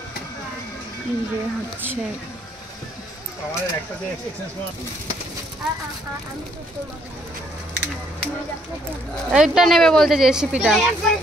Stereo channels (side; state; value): both; normal; correlation 0.67